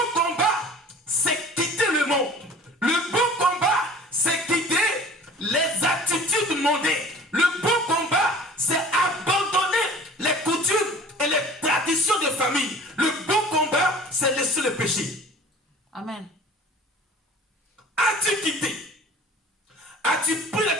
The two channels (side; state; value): both; normal; correlation 0.46